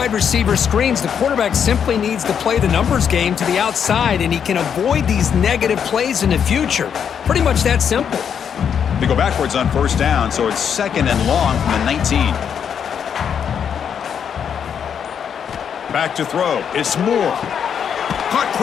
receiver screens, the quarterback simply needs to play the numbers game to the outside, and he can avoid these negative plays in the future. Pretty much that simple. They go backwards on 1st down, so it's 2nd and long from the 19. Back to throw. It's Moore. Caught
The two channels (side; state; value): right; quieter; 7.8 dB